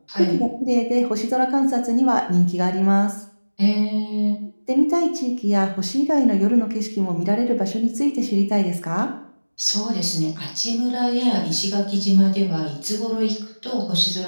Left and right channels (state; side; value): inverted; both; correlation -1.00